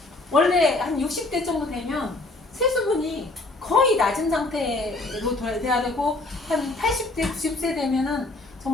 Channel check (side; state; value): right; quieter; 3.0 dB